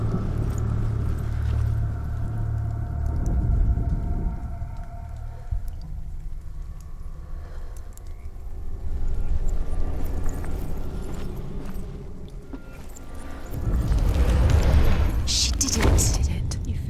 She did it. Did it. You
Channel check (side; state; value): both; identical; correlation 1.00